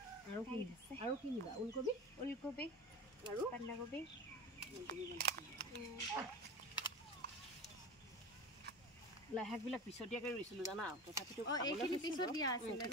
আৰু কি নিবা? ওলকবি আৰু বন্ধাকবি লাই শাকবিলাক পিছতীয়াকৈ ৰুইছিলোঁ জানা, তথাপিতো পিছত দিয়া আছিলে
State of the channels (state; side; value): normal; both; correlation 0.30